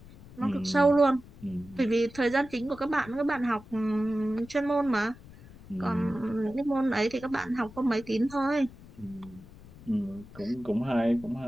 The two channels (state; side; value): noise; left; rumble, 20 dB below the sound